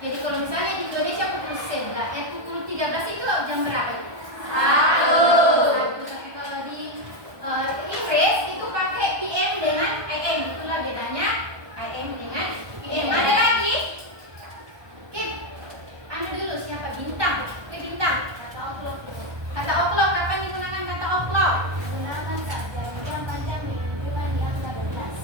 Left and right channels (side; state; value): left; late; 1.2 ms